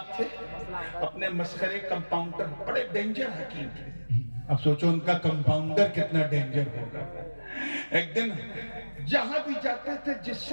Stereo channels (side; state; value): both; inverted; correlation -1.00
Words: تھے، اپنے مسخرے کمپاؤنڈر، بڑے ڈینجر حکیم تھے. اب سوچو ان کا کمپاؤنڈر کتنا ڈینجر ہوگا. ایک دن جہاں بھی جاتے تھے، جس